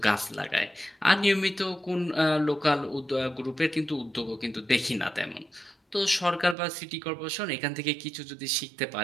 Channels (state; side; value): drops out; left; at 6.6 s